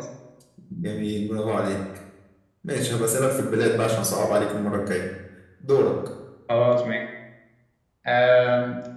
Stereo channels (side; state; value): both; identical; correlation 1.00